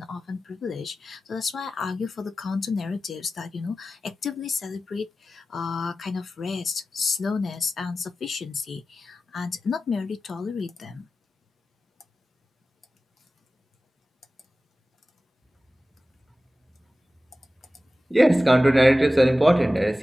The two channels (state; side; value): normal; both; correlation 0.95